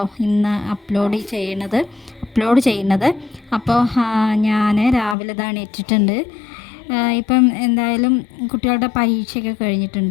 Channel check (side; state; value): right; drops out; at 5.2 s